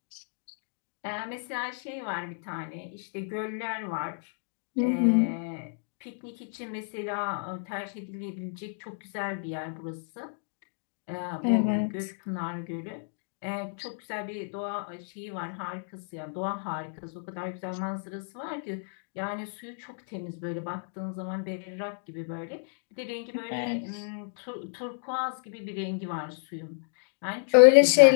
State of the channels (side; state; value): right; silent; digital silence